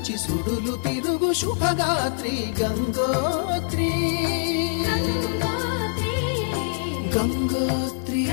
సుడులు తిరుగు శుభగాత్రి గంగోత్రి గంగోత్రి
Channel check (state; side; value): silent; right; 62 dB below the other